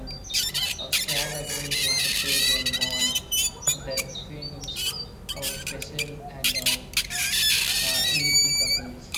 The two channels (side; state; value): both; identical; correlation 1.00